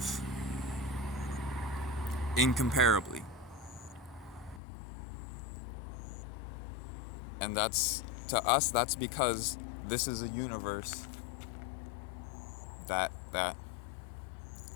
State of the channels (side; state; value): right; drops out; at 4.6 s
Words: incomparably. And to us, that's because this is a universe that